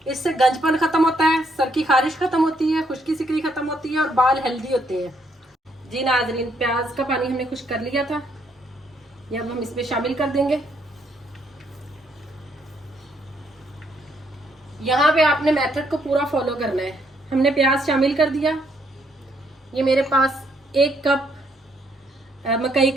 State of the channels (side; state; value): both; normal; correlation 0.72